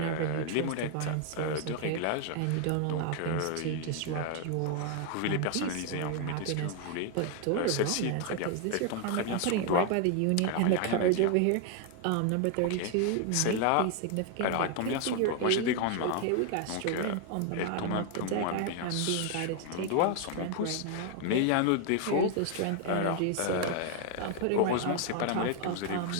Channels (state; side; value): different; both; correlation 0.00